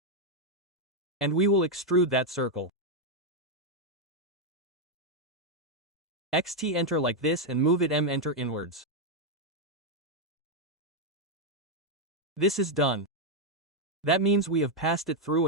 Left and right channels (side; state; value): both; normal; correlation 0.00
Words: And we will extrude that circle. XT enter like this and move it M enter inwards. This is done. That means we have passed it through